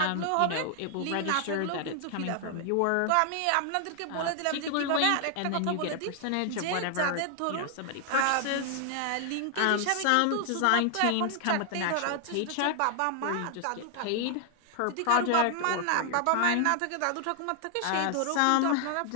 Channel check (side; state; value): both; different; correlation 0.00